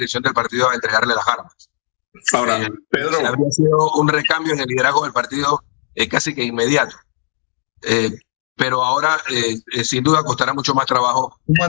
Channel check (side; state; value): right; silent; digital silence